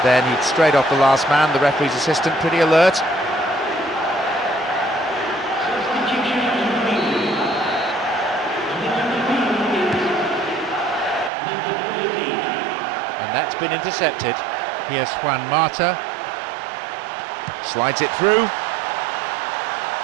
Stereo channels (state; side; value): drops out; left; at 11.3 s